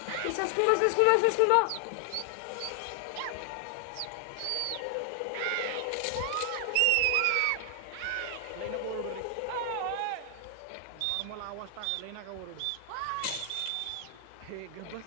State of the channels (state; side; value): different; both; correlation 0.00